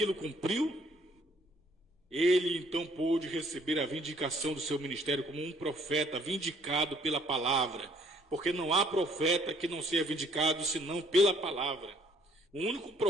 cumpriu, ele então pôde receber a vindicação do seu ministério como um profeta vindicado pela palavra, porque não há profeta que não seja vindicado senão pela palavra. O único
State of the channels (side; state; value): both; normal; correlation 0.63